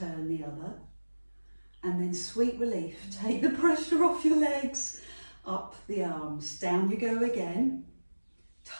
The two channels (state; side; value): inverted; both; correlation -1.00